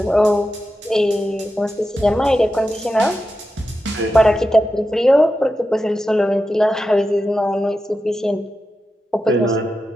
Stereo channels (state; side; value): normal; both; correlation 0.90